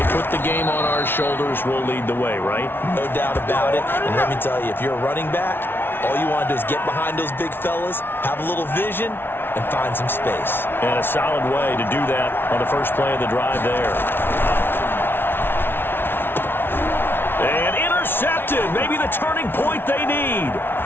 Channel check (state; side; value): late; right; 0.11 ms